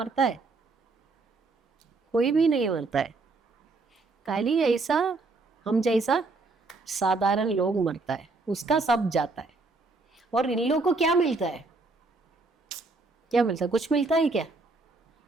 है, कोई भी नहीं मरता है। खाली ऐसा हम जैसा साधारण लोग मरता है, उसका सब जाता है। और इन लोगों को क्या मिलता है, क्या मिलता है? कुछ मिलता है क्या?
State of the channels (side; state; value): left; quieter; 3.6 dB